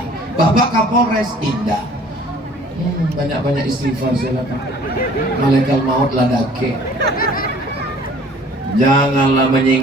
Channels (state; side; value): normal; both; correlation 0.52